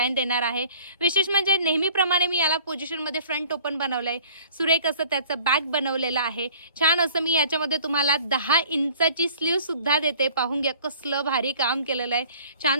देणार आहे. विशेष म्हणजे नेहमीप्रमाणे मी याला पोझिशनमध्ये फ्रंट ओपन बनवलंय, सुरेख असं त्याचं बॅक बनवलेलं आहे. छान असं मी याच्यामध्ये तुम्हाला 10 इंचाची स्लीव सुद्धा देते. पाहून घ्या कसलं भारी काम केलेलं आहे.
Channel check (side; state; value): both; inverted; correlation -0.50